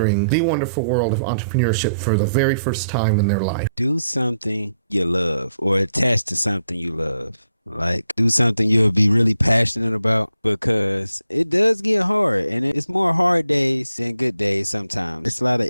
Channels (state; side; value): inverted; both; correlation -0.79